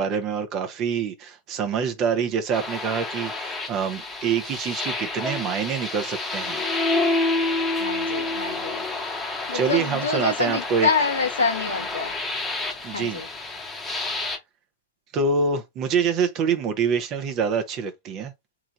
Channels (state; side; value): normal; both; correlation 0.18